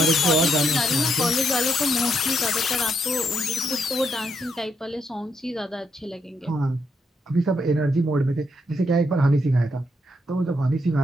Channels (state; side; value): normal; both; correlation 0.77